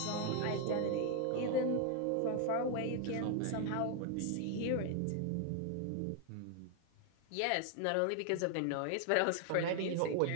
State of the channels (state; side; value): different; both; correlation 0.00